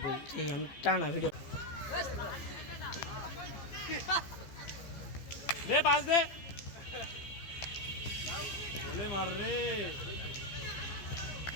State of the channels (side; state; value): right; late; 14 ms